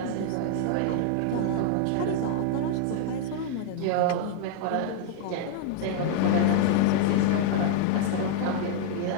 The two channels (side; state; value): both; different; correlation 0.00